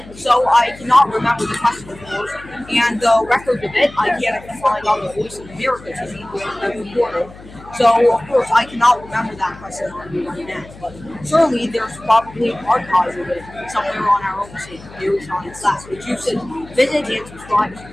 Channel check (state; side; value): noise; left; hum, 19 dB below the sound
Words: So I cannot remember the question, of course, and the record of it I can't find on the Voice of America TV where it was recorded. So, of course, I cannot remember that question on the internet, but certainly there's probably archives of it somewhere on our own site, Very Science Class, which you should visit and subscribe